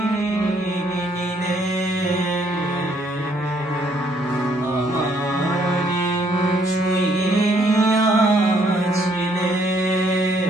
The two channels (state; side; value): normal; both; correlation 0.67